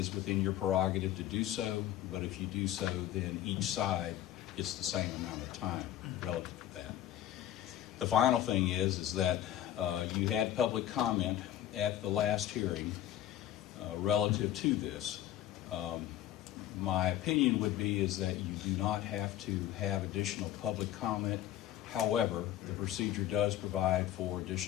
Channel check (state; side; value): quieter; right; 12.3 dB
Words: within your prerogative to do so, but if you do so, then each side gets the same amount of time relative to that. The final thing is that you had public comment at the last hearing relative to this. My opinion would be is that you do not have to have additional public comment. However, the procedure does provide for